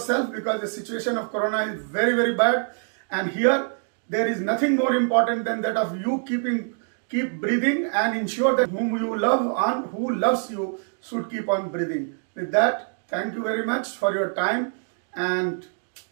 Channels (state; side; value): silent; left; 62 dB below the other